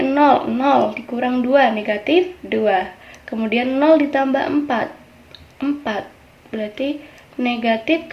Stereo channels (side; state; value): both; identical; correlation 1.00